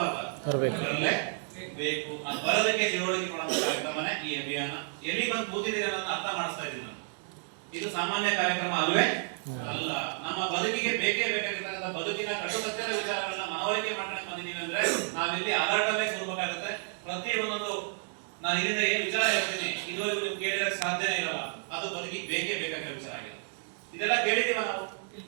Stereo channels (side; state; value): left; silent; 56 dB below the other